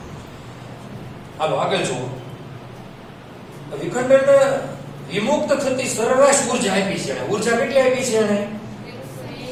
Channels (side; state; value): both; identical; correlation 1.00